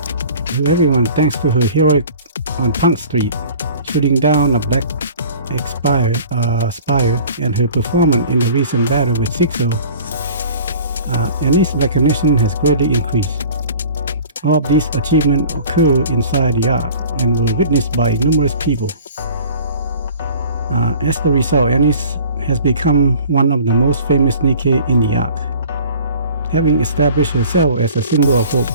everyone thanks to her heroic on Punk Street, shooting down a black spire, and her performance in the recent battle with Sixo. Anice's recognition has greatly increased. All of these achievements occur inside the Ark and were witnessed by numerous people. As the result, Anice has become one of the most famous Nikke in the Ark, having established herself as a symbol of hope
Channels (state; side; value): inverted; both; correlation -0.46